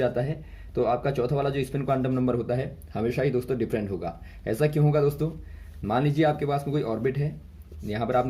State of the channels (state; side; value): identical; both; correlation 1.00